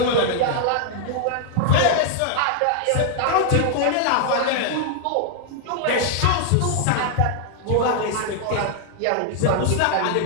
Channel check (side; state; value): both; different; correlation 0.00